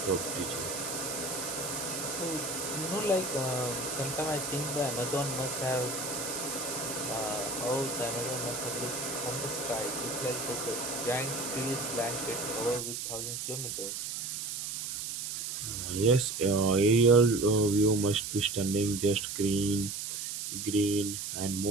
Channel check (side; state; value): right; noise; hiss, 4 dB below the sound